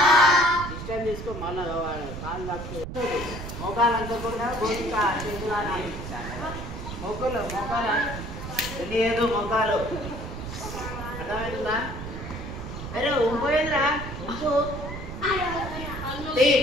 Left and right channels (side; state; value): right; noise; rumble, 8 dB below the sound